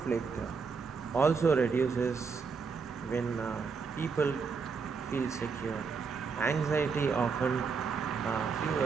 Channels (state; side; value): quieter; left; 5.3 dB